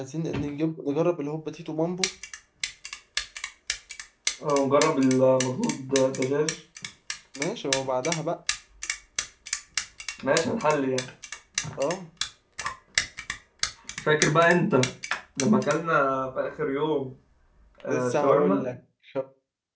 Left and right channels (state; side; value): identical; both; correlation 1.00